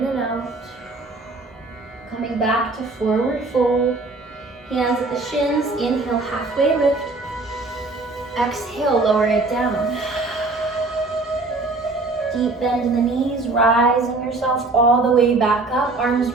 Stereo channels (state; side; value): quieter; left; 3.3 dB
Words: and out. Coming back to forward fold. Hands at the shins, inhale, halfway lift. Exhale, lower it down. Deep bend in the knees, rising yourself all the way back up. Arms